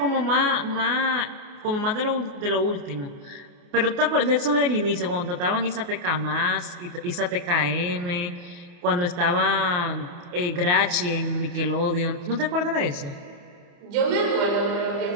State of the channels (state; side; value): late; left; 29 ms